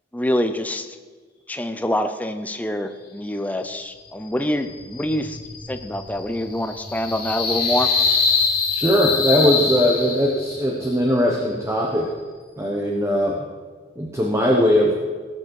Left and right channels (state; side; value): normal; both; correlation 0.53